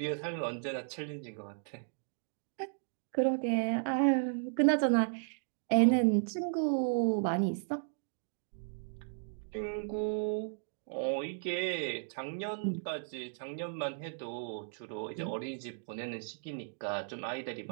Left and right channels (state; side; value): silent; left; digital silence